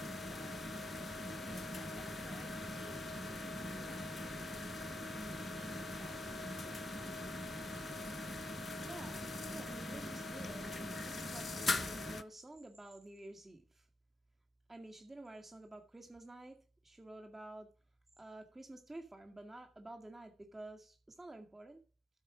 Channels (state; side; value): normal; both; correlation 0.82